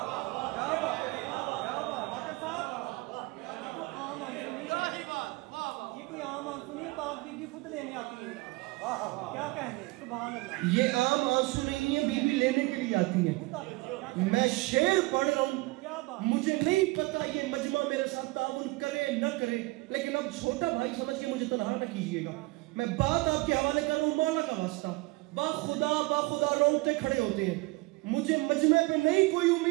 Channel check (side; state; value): left; quieter; 23.6 dB